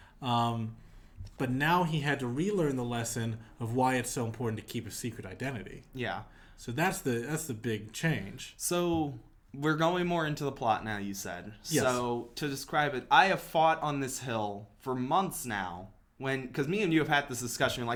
But now he had to relearn the lesson of why it's so important to keep a secret identity. Yeah. So that's the big change. So we're going more into the plot now, you said. Yes. So to describe it, I have fought on this hill for months now. Because me and you have had this discussion,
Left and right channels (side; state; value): both; identical; correlation 1.00